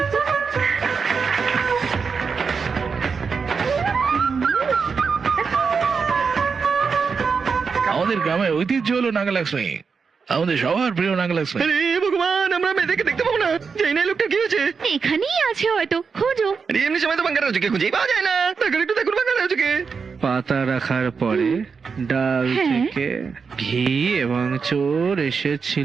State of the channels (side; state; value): left; quieter; 5.5 dB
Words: আমাদের গ্রামের ঐতিহ্য হলো নাগালক্ষ্মী, আমাদের সবার প্রিয় নাগালক্ষ্মী। আরে ভগবান, আমরা মেয়েদেরকে দেখতে পাবো না। জানি না এই লোকটা কি হয়েছে। এখানেই আছে হয়তো, খোঁজো। আরে এমনি সময় তো বাঙ্গার রাজুকে খুঁজেই পাওয়া যায় না। দেখুন একটু, দেখুন বাঙ্গার রাজুকে। পাতা রাখার পরে ডাল হ্যাঁ। থেকে ঘি এবং চোর